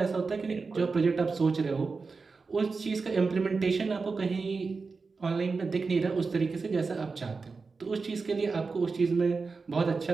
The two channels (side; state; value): left; quieter; 4.4 dB